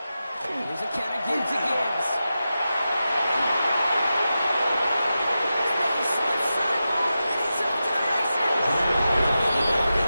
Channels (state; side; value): inverted; both; correlation -0.92